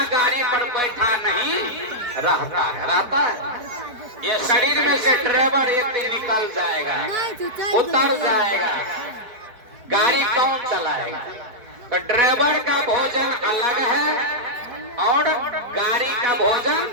गाड़ी पर बैठा नहीं रहता है, रहता है। ये शरीर में से ड्राइवर एक दिन निकल जाएगा, उतर जाएगा, गाड़ी कौन चलाएगा? तो ड्राइवर का भोजन अलग है और गाड़ी का भोजन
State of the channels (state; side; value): late; left; 4.6 ms